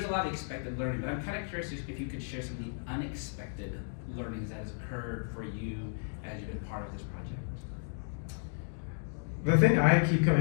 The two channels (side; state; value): right; silent; digital silence